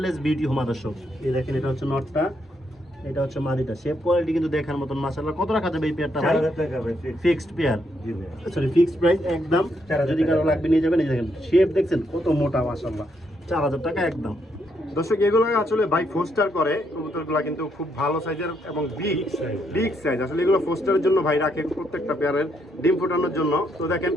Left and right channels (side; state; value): both; normal; correlation 0.76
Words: বিউটি হোমা দর্শক। এই দেখেন এটা হচ্ছে নটটা, এটা হচ্ছে মাদিটা। শেপ কোয়ালিটি কিন্তু দেখার মতন মাশাআল্লাহ। কত রাখা যাবে এই পেয়ারটা ভাই? 4000 টাকা ভাই। ফিক্সড পেয়ার, জি ভাই। সরি ফিক্সড প্রাইস একদম। 4000 যদি কারো লাগবে নিয়ে যাবেন। এই দেখেন শেপ দেখছেন কত মোটা মাশাআল্লাহ, 4000 টাকা একদম। দর্শক এগুলো আসলে ভাই ফোস্টার করে কবুতরগুলো, কিন্তু খুব ভালো সাইজের এবং বিগ সাইজ। আসলে এগুলো ফোস্টারের জন্য ভাই রাখে, প্রত্যেকটা পেয়ারের ডিম ফোটানোর জন্য। তো দেখেন